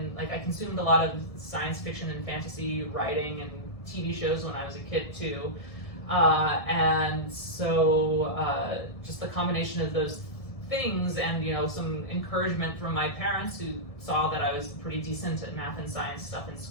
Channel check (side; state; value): right; late; 1.7 ms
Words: like I consumed a lot of science fiction and fantasy writing and TV shows when I was a kid too. And so just the combination of those things and, you know, some encouragement from my parents who saw that I was pretty decent at math and science stuff in